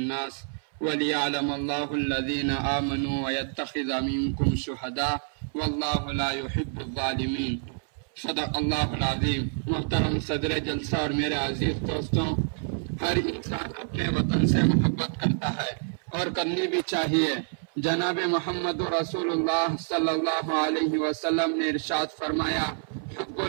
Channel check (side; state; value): left; silent; 60 dB below the other